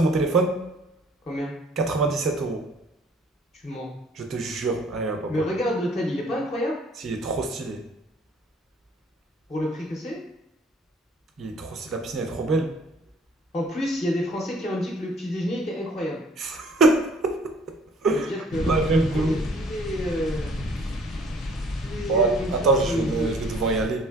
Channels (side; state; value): both; normal; correlation 0.56